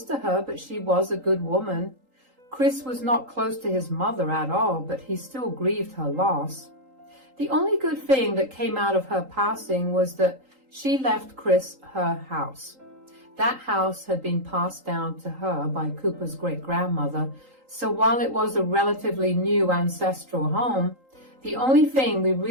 to her, but she was a good woman. Chris was not close to his mother at all, but he still grieved her loss. The only good thing that came out of her passing was that she left Chris her house. That house had been passed down to her by Cooper's great-grandmother, so while it was a relatively new ancestral home, the only thing we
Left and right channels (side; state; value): left; late; 3.8 ms